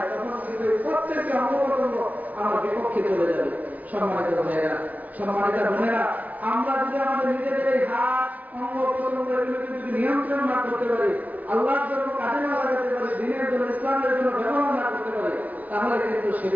তখন কিন্তু প্রত্যেকটি অঙ্গপ্রত্যঙ্গ আমার বিপক্ষে চলে যাবে। সম্মানিত ভাইয়েরা, সম্মানিত বোনেরা, আমরা যদি আমাদের নিজেদের এই হাত অঙ্গপ্রত্যঙ্গ এগুলোকে যদি নিয়ন্ত্রণ না করতে পারি, আল্লাহর জন্য কাজে না লাগাতে পারি, দিনের জন্য ইসলামের জন্য ব্যবহার না করতে পারি, তাহলে কিন্তু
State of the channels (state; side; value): late; left; 0.073 ms